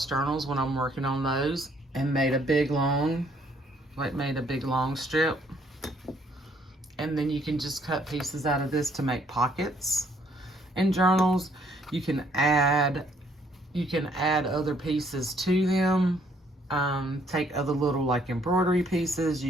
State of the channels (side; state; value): both; normal; correlation 0.66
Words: journals when I'm working on those, and made a big long strip. And then you can just cut pieces out of this to make pockets in journals. You can add other pieces to them. Take other little like embroidery pieces.